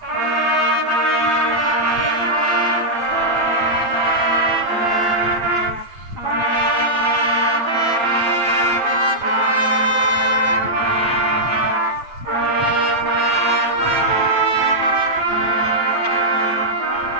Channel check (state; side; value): late; left; 8.9 ms